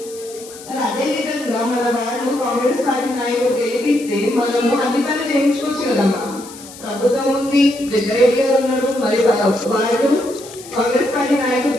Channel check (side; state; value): left; noise; hiss, 17 dB below the sound